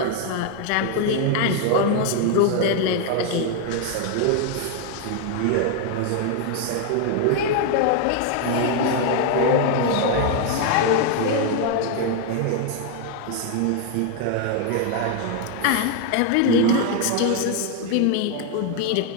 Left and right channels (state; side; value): different; both; correlation 0.01